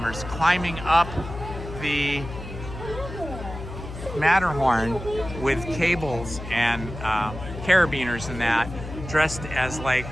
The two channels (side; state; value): left; noise; hum, 10 dB below the sound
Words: climbing up the Matterhorn with cables and carabiners and that, dressed as like